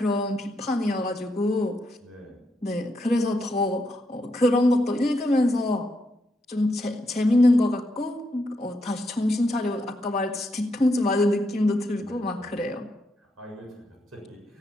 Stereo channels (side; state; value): both; normal; correlation 0.81